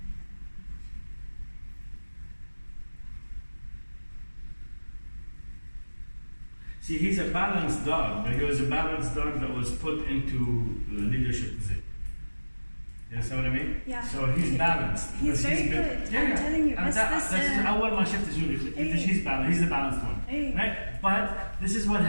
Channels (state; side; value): inverted; both; correlation -1.00